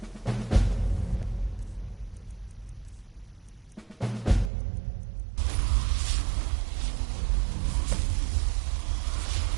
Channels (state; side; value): drops out; left; at 4.5 s